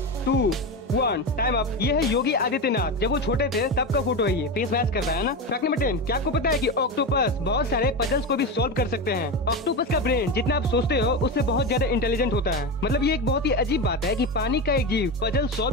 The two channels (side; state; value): both; normal; correlation 0.19